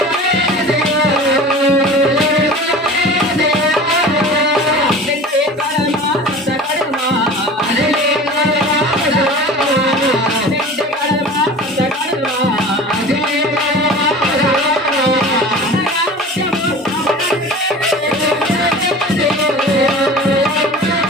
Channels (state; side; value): normal; both; correlation 0.38